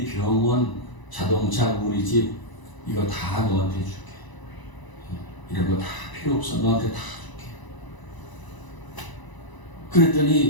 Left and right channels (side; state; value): right; late; 1.0 ms